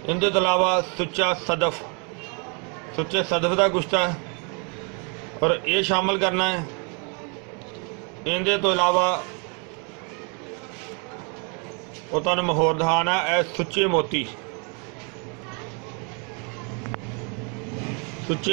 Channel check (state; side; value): quieter; left; 35.9 dB